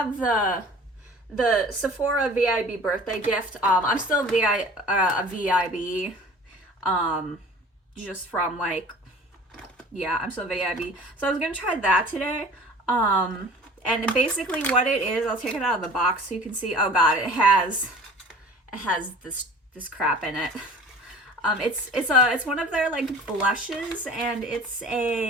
the Sephora VIB birthday gift. I'm still a VIB, just from like, yeah, I'm still VIB. So I was gonna try that today. And basically what it is, I'll take it out of the box so you can see. Oh god, it has this crap in it. It's one of their like blushes, and it's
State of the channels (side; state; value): both; normal; correlation 0.44